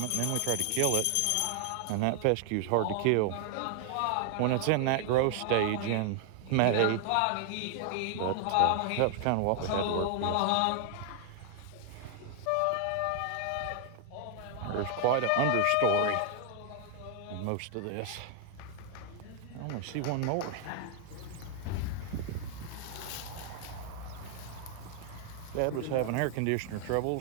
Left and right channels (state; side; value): different; both; correlation 0.00